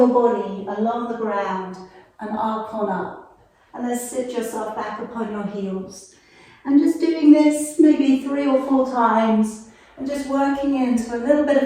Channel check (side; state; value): both; identical; correlation 1.00